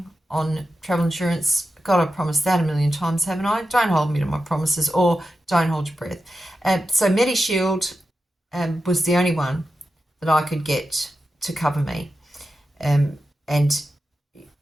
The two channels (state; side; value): normal; both; correlation 0.90